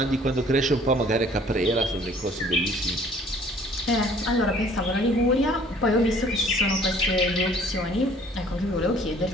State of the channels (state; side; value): normal; both; correlation 0.55